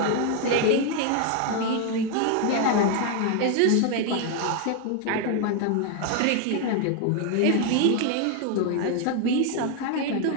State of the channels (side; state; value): both; different; correlation 0.00